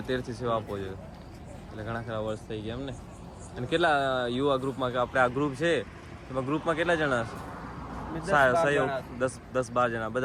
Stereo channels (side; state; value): both; identical; correlation 1.00